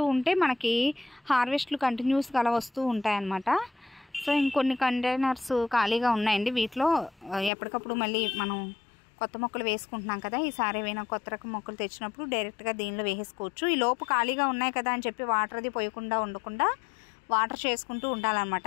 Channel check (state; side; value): drops out; right; at 7.5 s